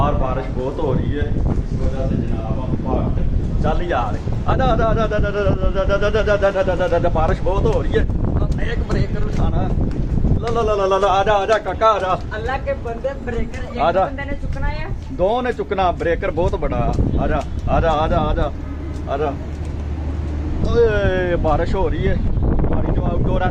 बारिश बहुत हो रही है इस वजह से जनाब हम भागते चल यार। बारिश बहुत हो रही है, एक ब्रेकर उठाना। ला ला ला ला ला, आजा आजा काका आजा। अल्लाह के बंदे ब्रेकर एक बंदे ने चुकना है, 2 ने चुकना, ब्रेकर बहुत बड़ा। आजा आजा आजा आजा आजा। ओए बारिश हो रही है, हमारी जो आउटडोर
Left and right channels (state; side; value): identical; both; correlation 1.00